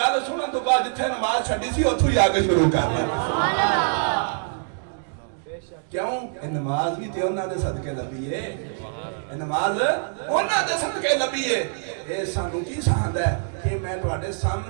سنن تو بعد جتھے نماز چھڈی سی اوتھوں ہی آ کے شروع کر لے. کیوں یہ نماز بھی تے انہاں دے صدقے لبھی ہے. یہ نماز انہاں دے صدقے لبھی ہے. اے سانو کی سہند ہے کہ میں تواڈے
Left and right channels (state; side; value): silent; left; digital silence